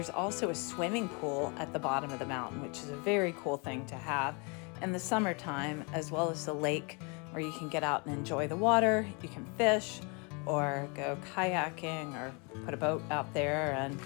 also a swimming pool at the bottom of the mountain, which is a very cool thing to have in the summertime, as well as the lake where you can get out and enjoy the water. You can fish or go kayaking or put a boat out there, and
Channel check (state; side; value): quieter; right; 32.4 dB